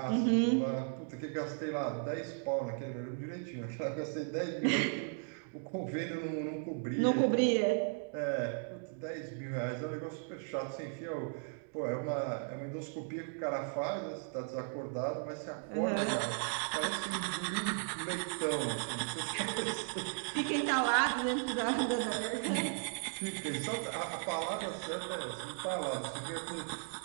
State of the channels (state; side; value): silent; left; 54 dB below the other